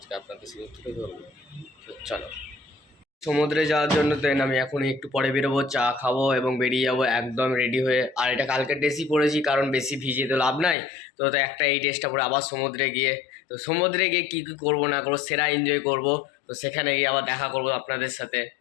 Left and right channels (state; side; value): drops out; right; at 10.8 s